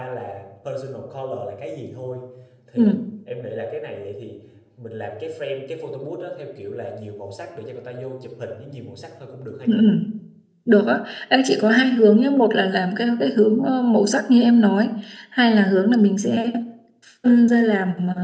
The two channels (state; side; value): identical; both; correlation 1.00